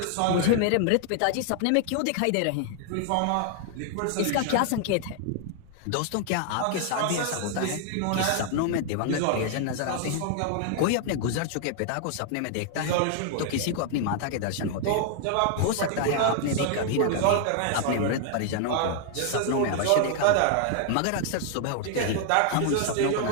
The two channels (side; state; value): both; different; correlation 0.00